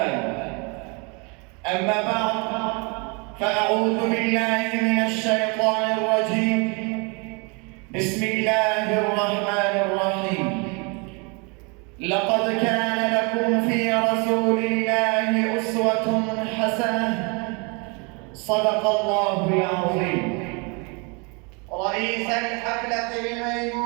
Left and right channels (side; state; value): left; quieter; 31.9 dB